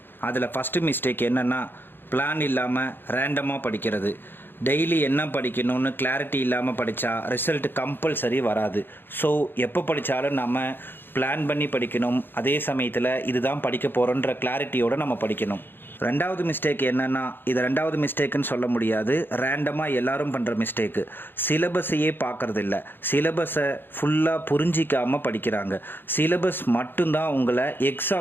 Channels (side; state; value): right; late; 0.099 ms